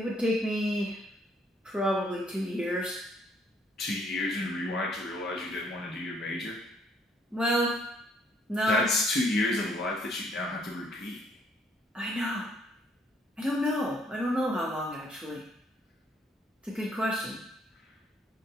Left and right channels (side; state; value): both; normal; correlation 0.66